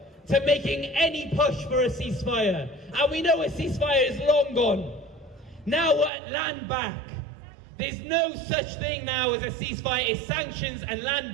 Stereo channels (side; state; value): left; drops out; at 6.1 s